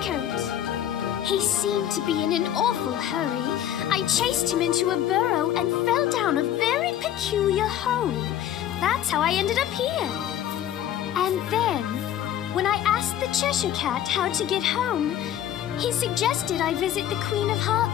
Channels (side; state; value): right; quieter; 11.1 dB